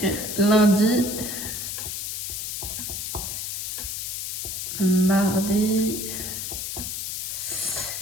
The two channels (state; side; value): noise; left; hiss, 4 dB below the sound